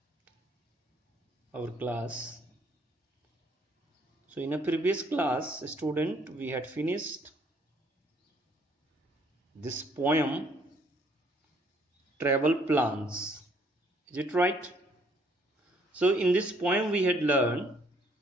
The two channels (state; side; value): normal; both; correlation 0.65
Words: our class. So in a previous class, student, we had finished this poem, Travel Plans. Is it right? So in this poem we had learned,